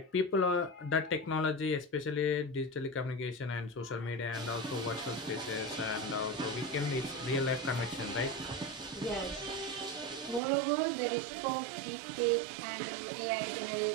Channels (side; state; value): left; drops out; at 10.4 s